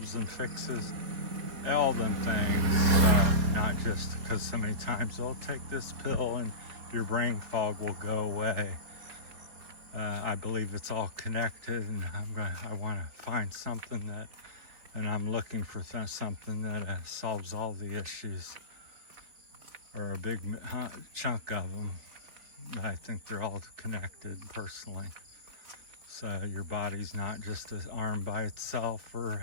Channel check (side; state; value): left; late; 4.4 ms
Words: and fixes all them things. So not just because so many times, oh, take this pill and your brain fog will go away. I believe it's all connected, and I want to find something that, and I'm looking for something that solves all the issues, or a big chunk of them. I think they're all connected personally. So your body's not just an arm by itself or